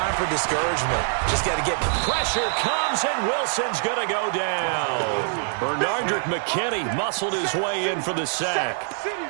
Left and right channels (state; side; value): silent; left; digital silence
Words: for discouragement. Just got to get pressure comes, and Wilson's going to go down. Bernardrick McKinney muscled his way in for the sack.